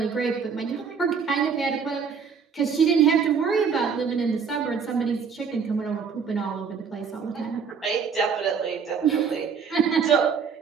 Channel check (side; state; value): left; quieter; 6.2 dB